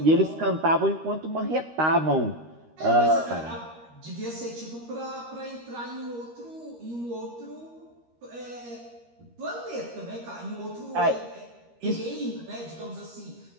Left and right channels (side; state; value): left; late; 13 ms